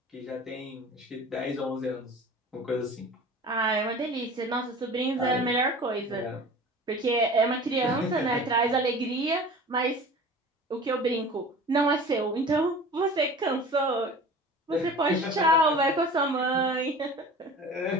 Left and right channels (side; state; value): both; normal; correlation 0.40